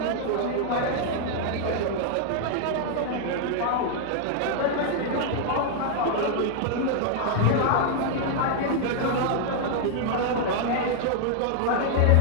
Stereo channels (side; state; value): both; different; correlation 0.00